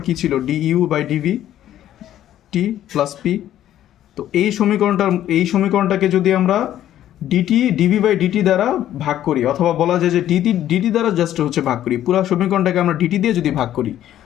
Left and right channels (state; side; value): quieter; right; 12.0 dB